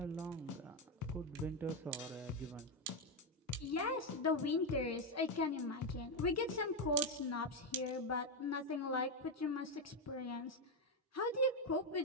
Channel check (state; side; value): normal; both; correlation 0.06